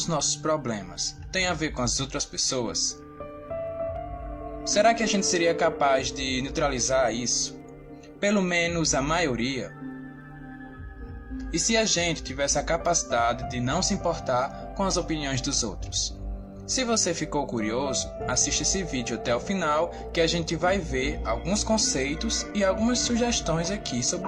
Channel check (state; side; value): identical; both; correlation 1.00